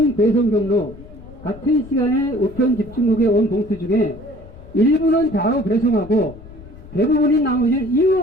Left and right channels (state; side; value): noise; left; rumble, 19 dB below the sound